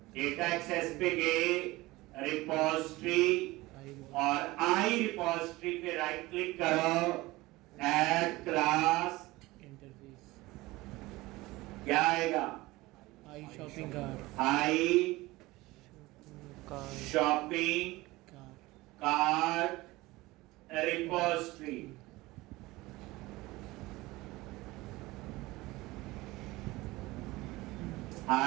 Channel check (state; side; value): quieter; left; 20.1 dB